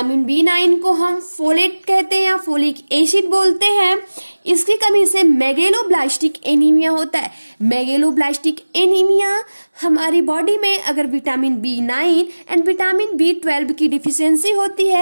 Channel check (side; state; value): both; inverted; correlation -1.00